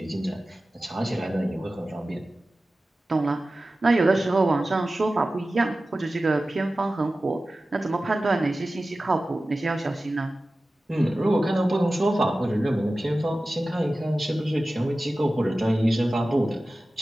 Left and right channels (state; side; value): normal; both; correlation 0.96